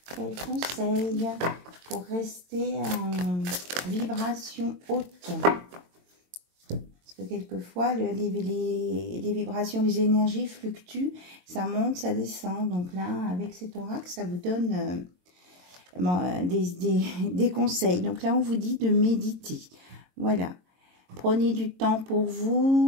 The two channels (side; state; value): left; late; 22 ms